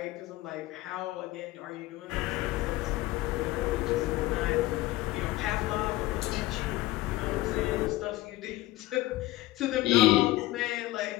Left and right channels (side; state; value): right; quieter; 17.8 dB